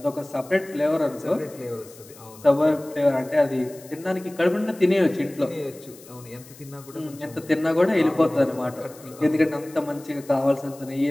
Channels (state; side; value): noise; left; hiss, 21 dB below the sound